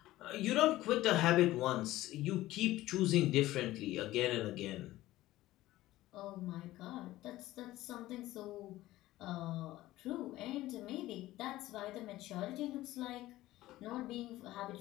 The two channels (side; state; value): right; quieter; 16.3 dB